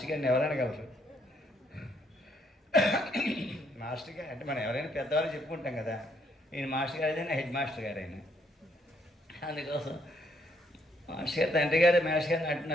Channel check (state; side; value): normal; both; correlation 0.71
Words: గారిని ఎవరనగలరు. మాస్టర్ గారు అంటే మనం ఎవరైనా పెద్దవాళ్ళు చెప్పుకుంటాం కదా, ఈయన మాస్టర్ గారు అయినా హెడ్ మాస్టర్ గారు అయినా. అందుకోసం మాస్టర్ గారు తండ్రి గారు మాస్టర్ గారిని